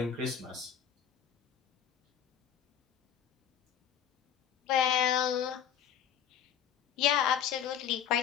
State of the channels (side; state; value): right; quieter; 9.2 dB